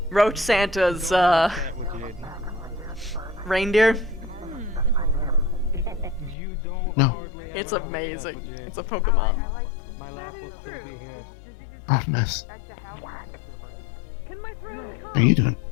Roach Santa's, reindeer? No. It's amazing. It's a Pokemon. My laugh will still be here. Oh, nice. Can my throat How are you doing?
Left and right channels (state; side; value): drops out; right; at 6.4 s